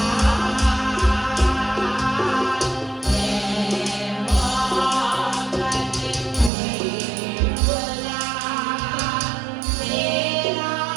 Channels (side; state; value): left; drops out; at 6.5 s